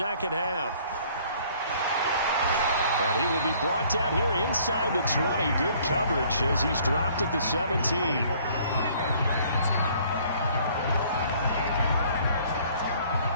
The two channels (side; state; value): both; inverted; correlation -0.58